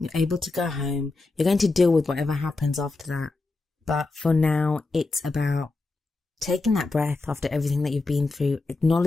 able to go home. You're going to deal with whatever happens after that. But for now, it's about taking that breath after everything that you've been through,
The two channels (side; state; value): right; quieter; 3.4 dB